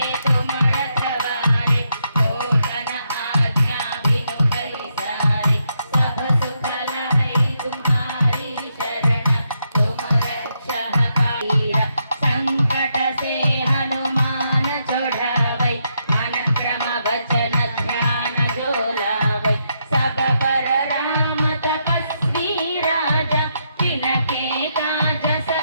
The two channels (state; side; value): inverted; both; correlation -0.80